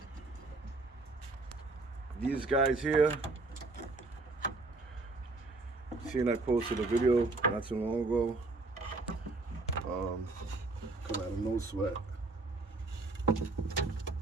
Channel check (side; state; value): left; quieter; 3.4 dB